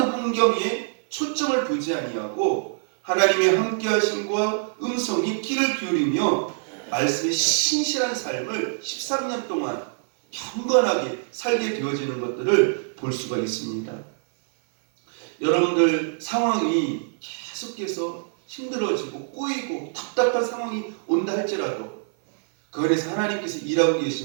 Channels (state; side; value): silent; left; 56 dB below the other